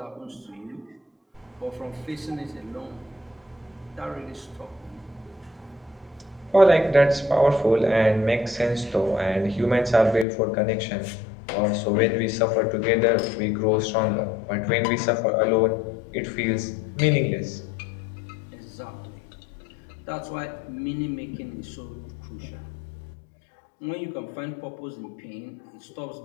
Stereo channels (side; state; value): right; drops out; at 10.2 s